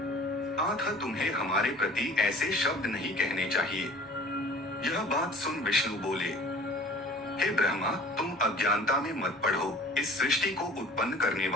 अतः तुम्हें हमारे प्रति ऐसे शब्द नहीं कहने चाहिए। यह बात सुन विष्णु बोले, हे ब्रह्मा, तुम अज्ञानता में मत पड़ो। इस सृष्टि को उत्पन्न करने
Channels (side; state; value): both; normal; correlation 0.47